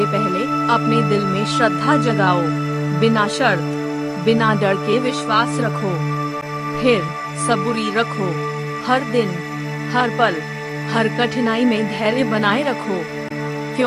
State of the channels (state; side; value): identical; both; correlation 1.00